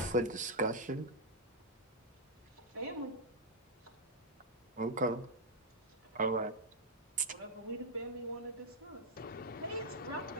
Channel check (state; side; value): normal; both; correlation -0.03